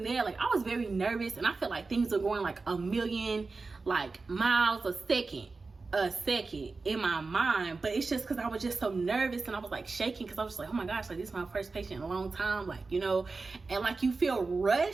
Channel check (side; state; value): left; quieter; 4.0 dB